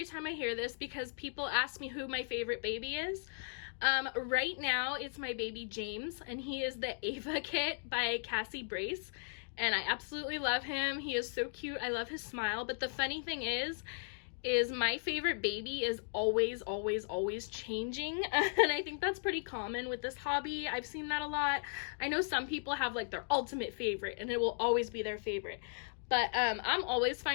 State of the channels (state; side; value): silent; right; digital silence